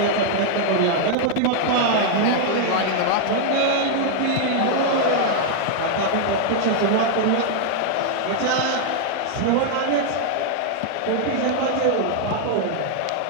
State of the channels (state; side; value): different; both; correlation 0.00